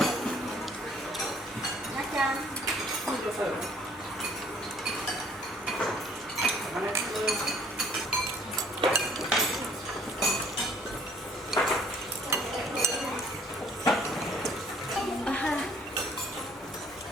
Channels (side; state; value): both; normal; correlation 0.60